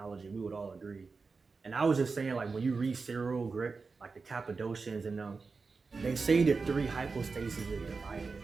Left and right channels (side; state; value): left; quieter; 4.5 dB